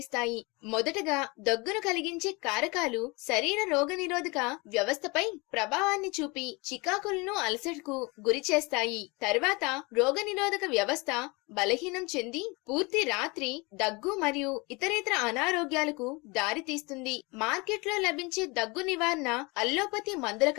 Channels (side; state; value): right; quieter; 26.6 dB